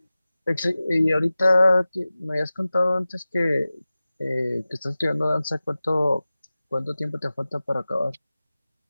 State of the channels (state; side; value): inverted; both; correlation -0.96